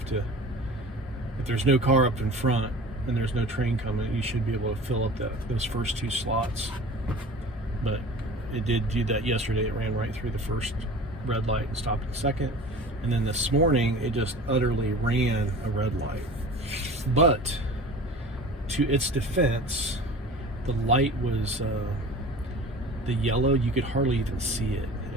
there's no car up in front and there's no train coming, you should be able to fill up those first two slots. But it did do that yesterday. It ran right through the first red light and stopped at the second. And then this morning, it just utterly ran a red light. But to its defense, the light was the yellow. You could hardly even see it.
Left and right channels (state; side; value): normal; both; correlation 0.39